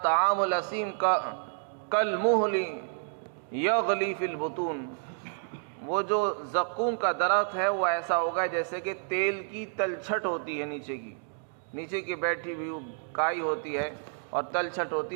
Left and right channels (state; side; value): silent; left; digital silence